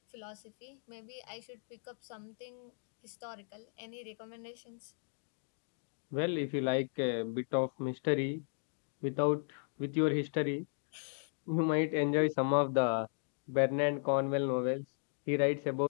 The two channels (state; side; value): silent; right; digital silence